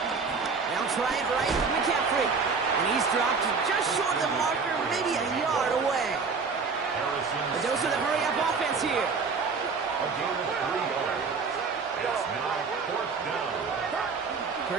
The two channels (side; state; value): left; quieter; 4.9 dB